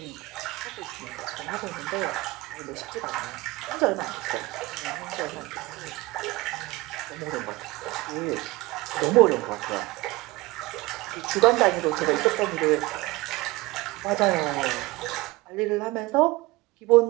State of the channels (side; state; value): left; quieter; 21.4 dB